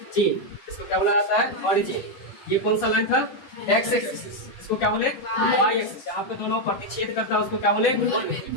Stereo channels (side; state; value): right; late; 10 ms